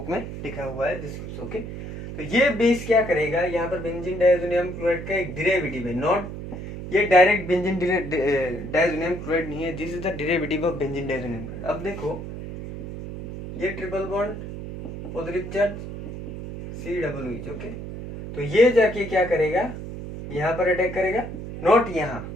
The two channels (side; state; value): right; noise; hum, 9 dB below the sound